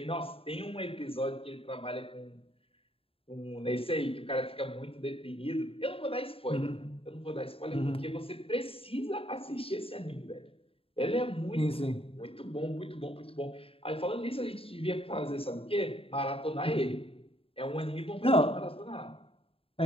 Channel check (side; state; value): right; late; 0.27 ms